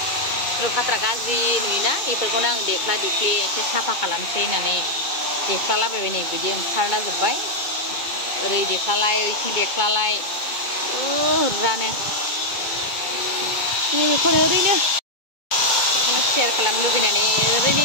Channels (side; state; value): right; late; 2.2 ms